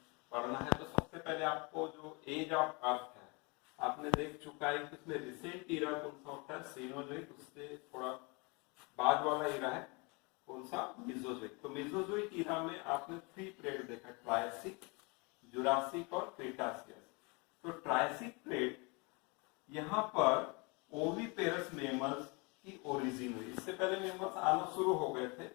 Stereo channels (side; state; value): right; quieter; 29.6 dB